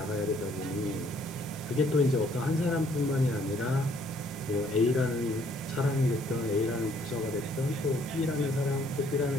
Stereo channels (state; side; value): normal; both; correlation 0.64